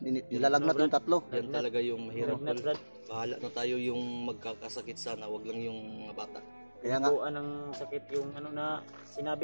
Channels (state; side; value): inverted; both; correlation -1.00